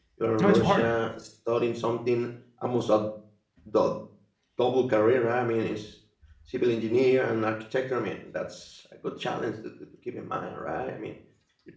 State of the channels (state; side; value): identical; both; correlation 1.00